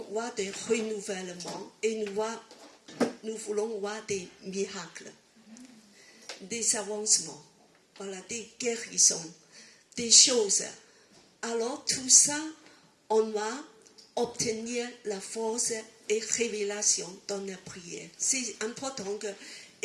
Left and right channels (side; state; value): both; identical; correlation 1.00